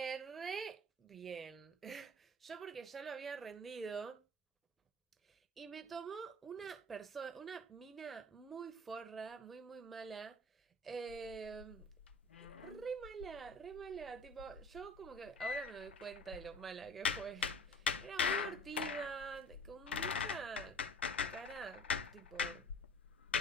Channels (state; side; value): normal; both; correlation 0.43